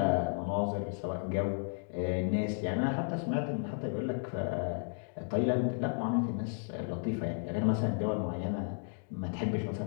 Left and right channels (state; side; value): silent; right; 55 dB below the other